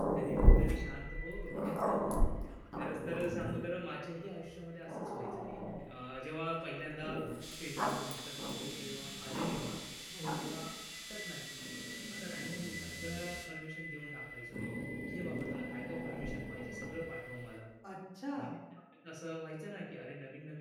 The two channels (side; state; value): both; identical; correlation 1.00